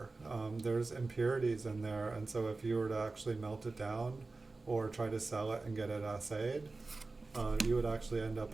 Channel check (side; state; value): left; quieter; 3.6 dB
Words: There's impurities in there. And so if you were to actually melt it down or try to sell it and get it assayed, you would actually end